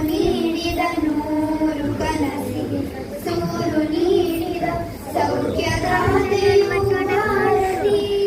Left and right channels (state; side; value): identical; both; correlation 1.00